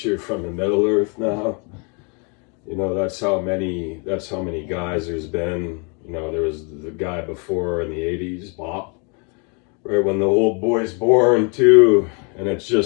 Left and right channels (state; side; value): quieter; right; 34.8 dB